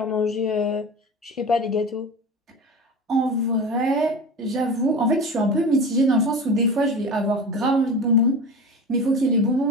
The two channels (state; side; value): normal; both; correlation 0.31